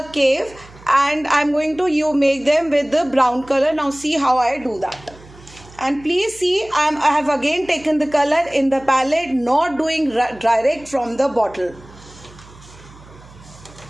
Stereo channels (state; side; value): noise; right; hum, 22 dB below the sound